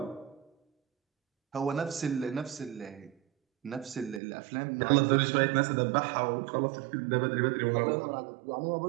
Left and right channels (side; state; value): left; drops out; at 4.2 s